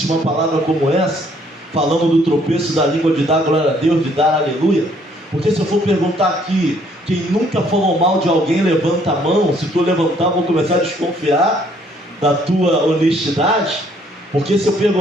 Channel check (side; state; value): both; normal; correlation 0.64